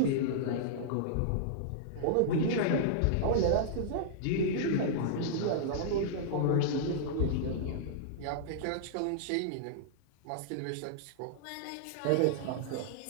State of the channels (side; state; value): both; different; correlation -0.02